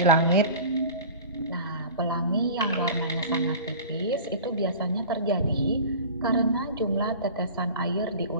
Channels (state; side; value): inverted; both; correlation -0.38